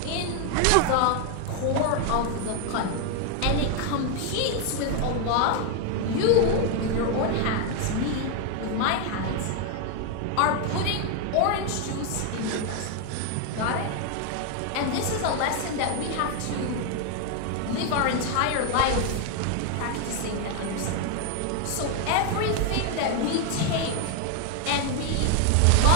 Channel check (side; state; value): both; different; correlation 0.01